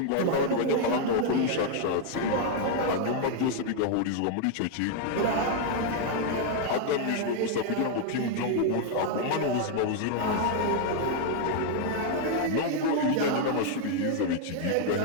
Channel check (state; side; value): different; both; correlation 0.00